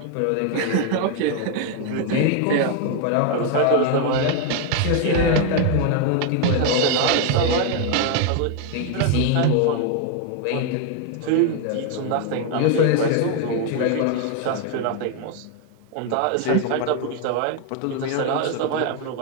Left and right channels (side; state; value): both; different; correlation 0.01